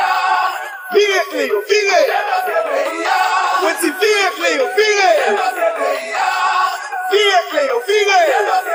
Virez Cléo, virez. Petit virez Cléo, virez. Virez Cléo, virez.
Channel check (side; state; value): both; identical; correlation 1.00